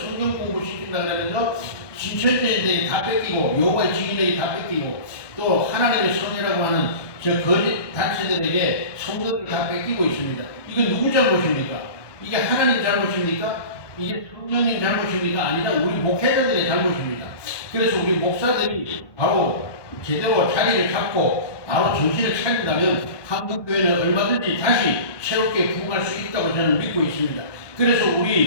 공부 시킨다 그러면서 신천지인들이 다 뺏기고 여호와의 증인들이 다 뺏기고 또 하나님의 선이라고 하는 저 거짓 단체들에게 성도들을 다 뺏기고 있습니다. 이건 누구 잘못입니까? 이게 하나님 잘못입니까? 이게 성령님 잘못입니까? 아니라 우리 목회자들의 잘못입니다. 그래서 우리 목사들이 바로 제대로 자리를 잡고 바로 정신을 차린다면 한국교회는 얼마든지 다시 새롭게 부흥할 수 있다고 저는 믿고 있습니다. 그래서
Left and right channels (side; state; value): right; late; 1.2 ms